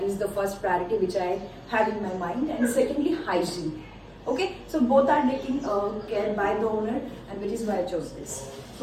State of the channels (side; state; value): both; identical; correlation 1.00